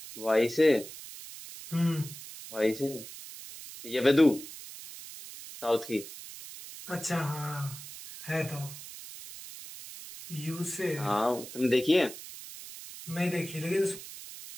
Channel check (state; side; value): noise; right; hiss, 13 dB below the sound